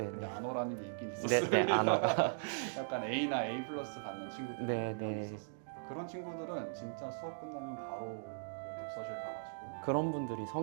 근데 안어라는 게 있긴 있었어요. 네, 약간 A나 A 플러스 받는 친구들이 네, 분명히 네. 있었으니까 그런 친구들은 진짜 수업 끝나면 바로 그 독서실 가가지고 그런 분들이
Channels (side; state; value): left; silent; digital silence